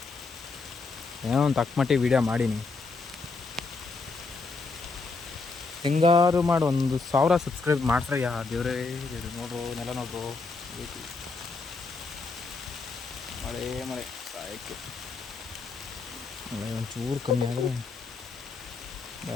ಏನೋ ಒಂದು ತಕ್ಕಮಟ್ಟಿಗೆ ವೀಡಿಯೋ ಮಾಡೀನಿ. ಹೆಂಗಾರು ಮಾಡಿ ಒಂದು 1000 ಸಬ್ಸ್ಕ್ರೈಬ್ ಮಾಡ್ಸ್ರಯ್ಯ ದೇವ್ರೇ ದೇವ್ರು. ನೋಡ್ರು ನೆಲ ನೋಡ್ರು, ಮಳೆ ಮಳೆ ಸಾಯಕ್ಕೆ. ಮಳೆ ಒಂಚೂರು ಕಮ್ಮಿ ಆದರೆ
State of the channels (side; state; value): right; quieter; 4.1 dB